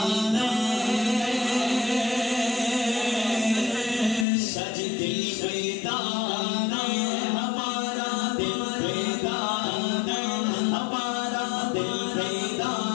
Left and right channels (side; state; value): right; drops out; at 4.2 s